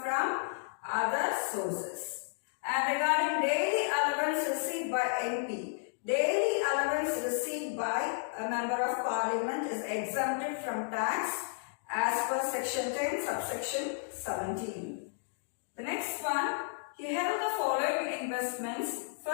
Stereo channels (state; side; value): silent; right; digital silence